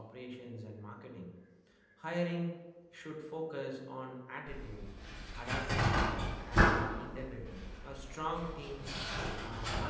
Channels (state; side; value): identical; both; correlation 1.00